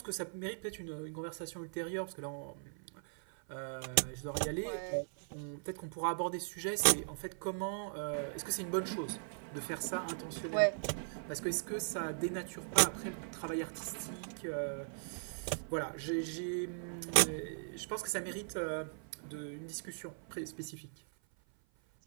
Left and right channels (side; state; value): left; silent; 52 dB below the other